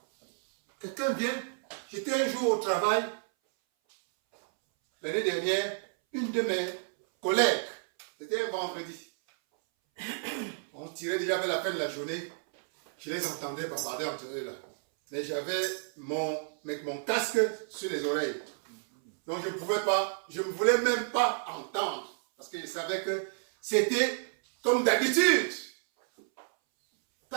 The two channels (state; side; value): silent; left; 57 dB below the other